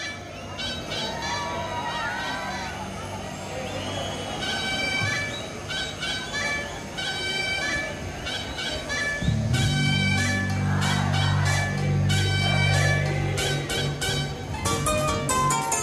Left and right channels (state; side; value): identical; both; correlation 1.00